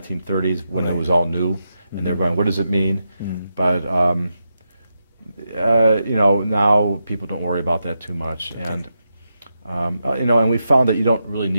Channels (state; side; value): inverted; both; correlation -0.86